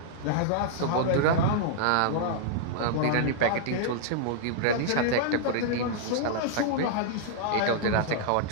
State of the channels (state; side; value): different; both; correlation -0.01